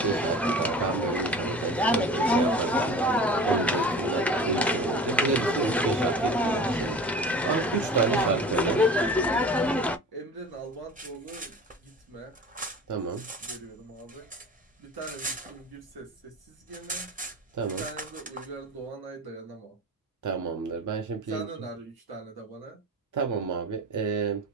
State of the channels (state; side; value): normal; both; correlation 0.38